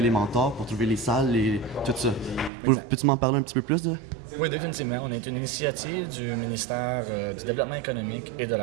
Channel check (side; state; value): left; drops out; at 2.5 s